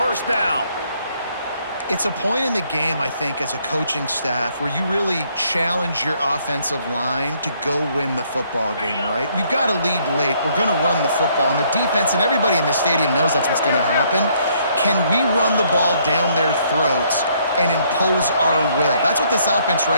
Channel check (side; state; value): both; inverted; correlation -0.67